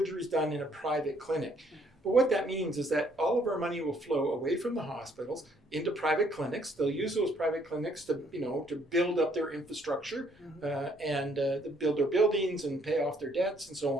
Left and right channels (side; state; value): both; normal; correlation 0.66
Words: done in a private clinic. But what that means is that all of our money will flow away from the hospitals into private clinics. They'll use those private clinics to build up their infrastructure and build their buildings and pay off their debts and so